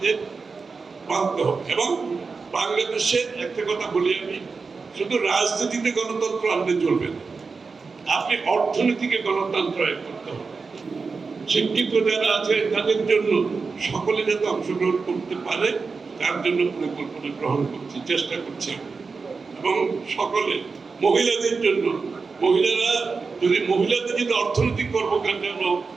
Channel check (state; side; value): quieter; left; 4.6 dB